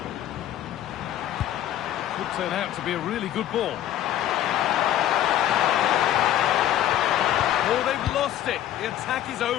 Could turn out to be a really good ball. Oh, they've lost it. The attack is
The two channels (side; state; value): right; quieter; 12.1 dB